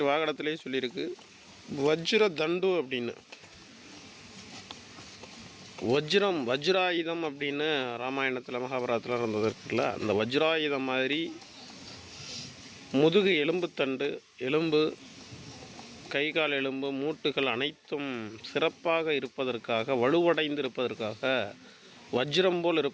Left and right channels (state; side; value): identical; both; correlation 1.00